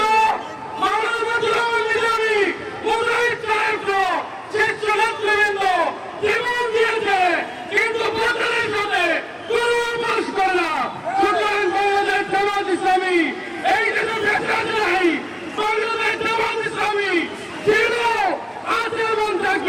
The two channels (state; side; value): identical; both; correlation 1.00